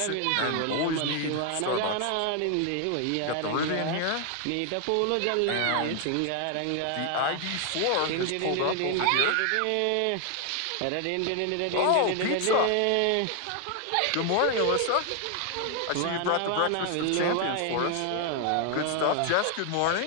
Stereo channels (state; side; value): different; both; correlation 0.00